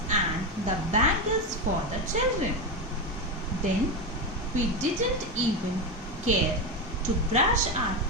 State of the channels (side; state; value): both; normal; correlation 0.13